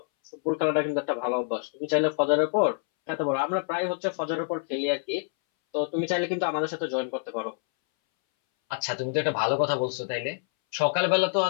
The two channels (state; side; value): silent; right; 60 dB below the other